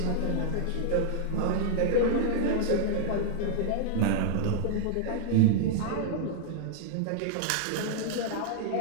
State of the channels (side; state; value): both; different; correlation -0.01